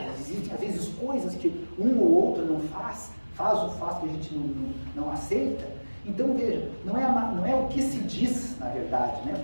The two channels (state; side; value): inverted; both; correlation -1.00